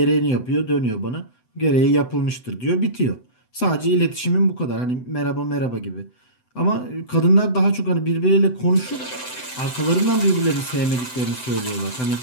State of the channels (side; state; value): right; late; 7.9 ms